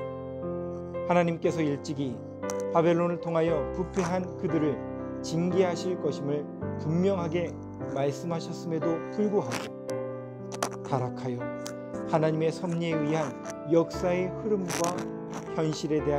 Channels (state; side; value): identical; both; correlation 1.00